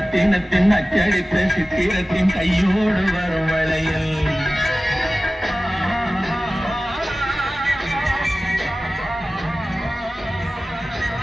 அச்சடித்த சித்திரத்தின் கையோடு வரும் வளையல்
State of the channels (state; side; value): normal; both; correlation 0.96